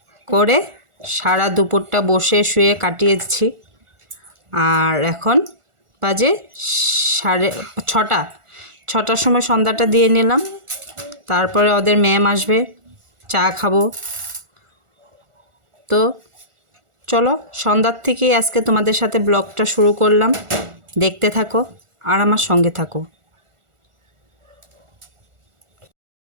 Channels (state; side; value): late; left; 1.4 ms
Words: করে সারা দুপুরটা বসে শুয়ে কাটিয়েছি। আর এখন বাজে 6টার সময় সন্ধ্যাটা দিয়ে নিলাম। তারপরে ওদের ম্যাম আসবে, চা খাবো। তো চলো, সন্ধ্যার থেকেই আজকে তোমাদের সাথে ব্লগটা শুরু করলাম। দেখতে থাকো আর আমার সঙ্গে থাকো।